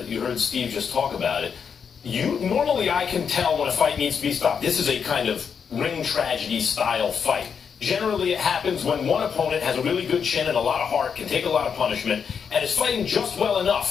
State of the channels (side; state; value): right; quieter; 6.7 dB